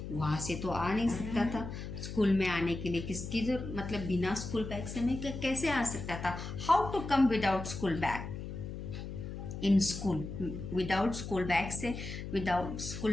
वहाँ से तो आ नहीं सकता था। स्कूल में आने के लिए किसकी जरूरत, मतलब बिना स्कूल बैग से मैं कैसे आ सकता था। How to come without school bag in school, without school bag से, विदाउट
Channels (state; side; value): noise; left; hum, 8 dB below the sound